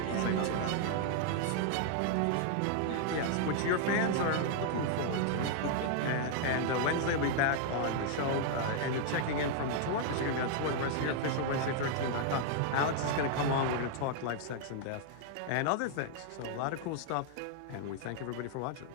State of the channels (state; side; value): different; both; correlation 0.00